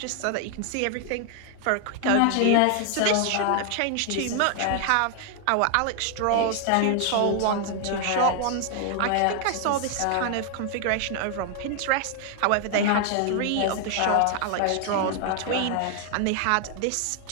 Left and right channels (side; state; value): both; different; correlation 0.00